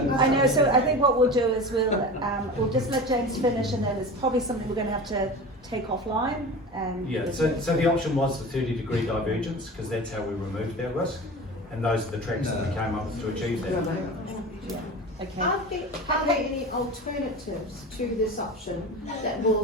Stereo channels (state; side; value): normal; both; correlation 0.32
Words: know, so I think what we'll do is we'll just let James finish, and then it's probably something we're going to have to take offline. And Yeah, so the option was the 30-degree divergence, because that's how we removed that risk, and those are the tracks that we came up with to achieve that. Okay. Are there any alternatives to this option that